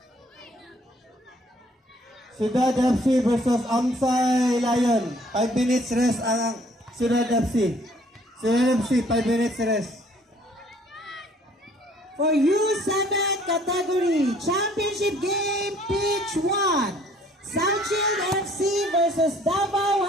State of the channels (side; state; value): both; normal; correlation 0.59